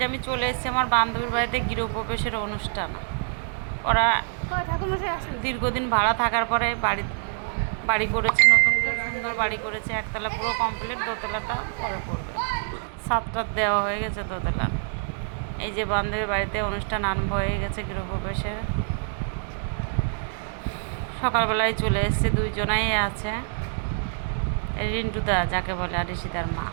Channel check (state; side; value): silent; left; digital silence